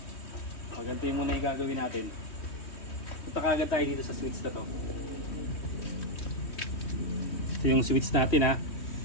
Ganito yung muna yung gagawin natin. Punta kagad tayo dito sa switch na to. Ito yung switch natin ha.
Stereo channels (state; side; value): late; right; 3.1 ms